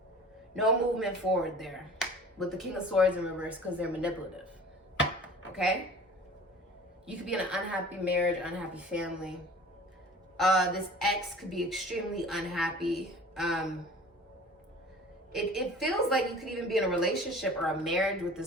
No movement forward there with the King of Swords in reverse because they're manipulative. Okay? You could be in an unhappy marriage, unhappy family. This ex could be extremely unhappy. It feels like you could even be in a relationship or a marriage with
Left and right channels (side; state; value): both; normal; correlation 0.44